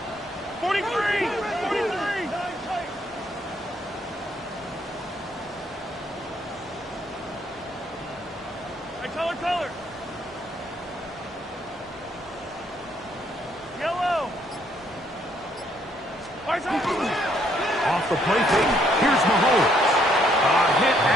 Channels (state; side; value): normal; both; correlation 0.69